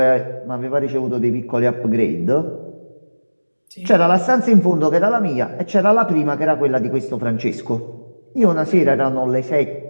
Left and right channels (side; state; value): both; inverted; correlation -1.00